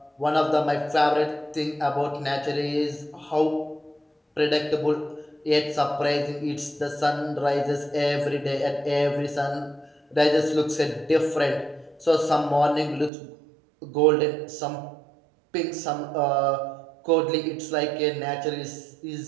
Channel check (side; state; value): left; drops out; at 13.1 s